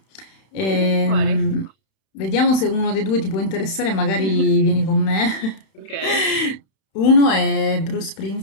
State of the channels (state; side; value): late; right; 31 ms